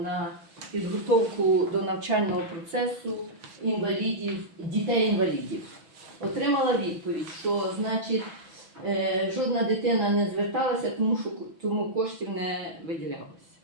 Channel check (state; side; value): late; left; 6.2 ms